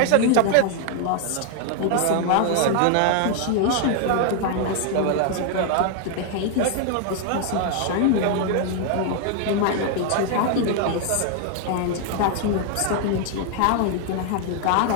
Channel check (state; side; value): different; both; correlation 0.00